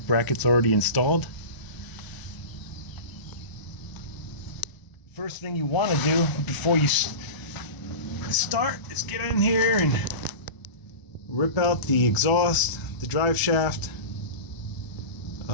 brackets already installed. First thing you want to do before you start is get in here and rip out the exhaust, the drive shaft.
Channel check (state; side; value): late; right; 1.0 ms